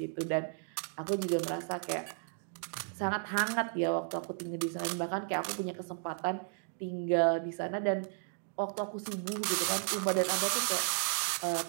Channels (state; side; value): silent; left; 55 dB below the other